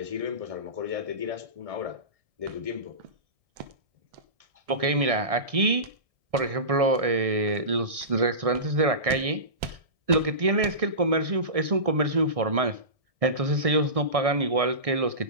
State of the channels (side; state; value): left; late; 1.6 ms